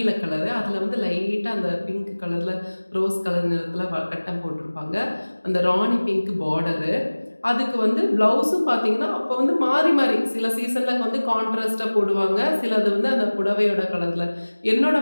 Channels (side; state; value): both; inverted; correlation -1.00